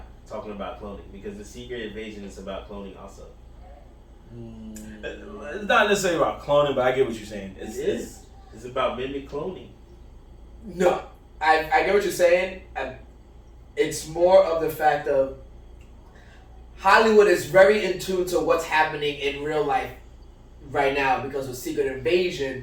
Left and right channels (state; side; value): identical; both; correlation 1.00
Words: talking about cloning, because the Secret Invasion is about cloning also. It's not necessarily about cloning, but I get what you're saying. It's about mimic cloning. No, I get what you're saying. It's more of the fact of Hollywood is very in tune to what's happening in real life right now because of Secret